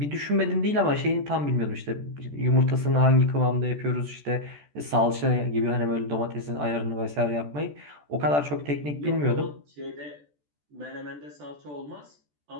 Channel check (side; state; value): left; late; 14 ms